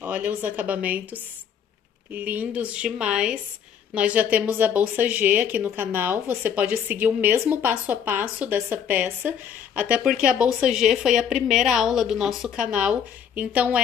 os acabamentos lindos demais. Nós já temos a bolsa G aqui no canal. Você pode seguir o mesmo passo a passo dessa peça, até porque a bolsa G foi a primeira aula do nosso canal. Então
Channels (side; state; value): right; quieter; 8.1 dB